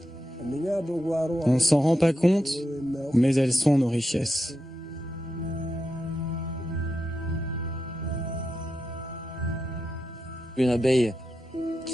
On ne s'en rend pas compte, mais elles sont nos richesses. Une abeille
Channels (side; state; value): both; normal; correlation 0.87